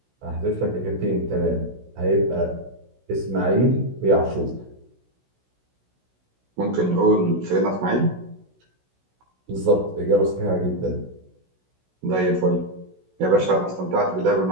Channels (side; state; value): left; late; 16 ms